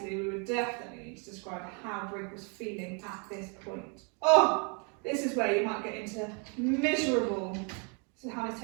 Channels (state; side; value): quieter; left; 36.4 dB